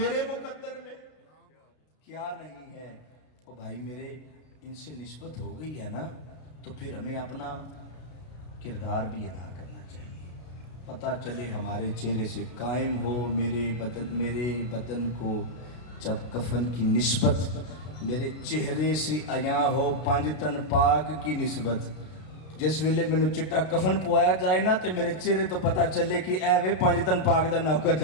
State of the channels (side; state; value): right; late; 32 ms